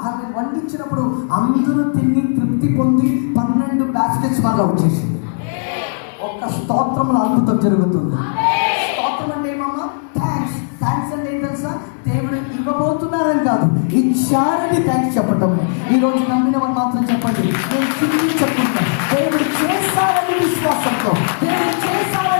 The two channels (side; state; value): right; silent; digital silence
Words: ఆమె వండించినప్పుడు అందరూ తిని తృప్తి పొంది 12 బాస్కెట్స్ మాలో వచ్చేసింది. ఒక్క స్తోత్రంలో అద్భుతం జరుగుతుంది. స్తోత్రం అంటే ఏమమ్మా? థ్యాంక్స్ అంటే ఏం తెలుసా? దేవుడు ఇవ్వబోతున్నారని కాదు, ఇచ్చారని థ్యాంక్స్ చెప్పటం. ఈ రోజు నమ్మిన వాళ్ళు మాత్రం చెప్పండి, నేను చెప్తున్నా. దేవుడు చేస్తారని విశ్వాసంతో, దేవుడు